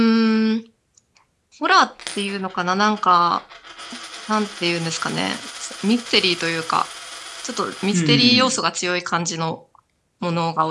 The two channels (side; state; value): both; identical; correlation 1.00